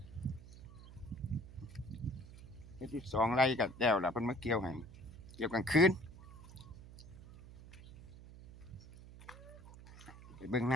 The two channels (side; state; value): right; noise; hum, 16 dB below the sound